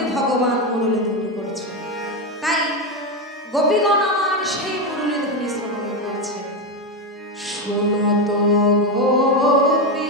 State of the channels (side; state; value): both; normal; correlation 0.11